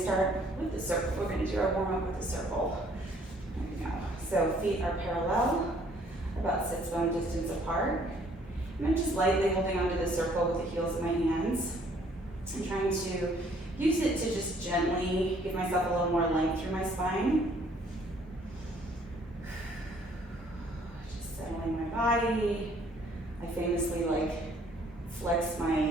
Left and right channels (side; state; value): both; normal; correlation 0.62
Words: start with the circle. We're going to do our warm-up with the circle. There we go. So feet are parallel, about sits bone distance apart. And I'm just lightly holding onto the circle with the heels of my hands. I'm trying to use it to just gently give myself a little more length through my spine. Just settling my body. I famously flex